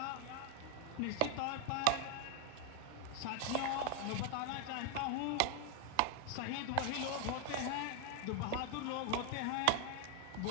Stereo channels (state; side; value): different; both; correlation 0.00